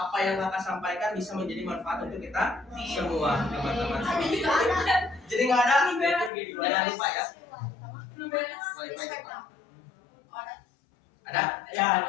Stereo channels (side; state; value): right; drops out; at 6.3 s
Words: yang kakak sampaikan bisa menjadi manfaat untuk kita semua, teman-teman. Jadi nggak ada? Jangan lupa ya. Wifi cepat. Ada? Ya,